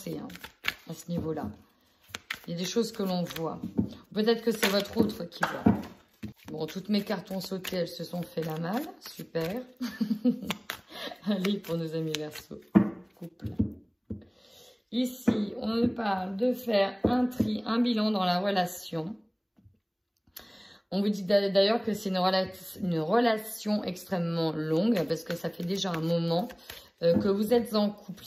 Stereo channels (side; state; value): both; identical; correlation 1.00